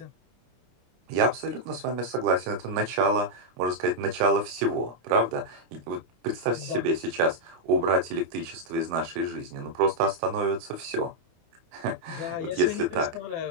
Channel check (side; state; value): left; late; 25 ms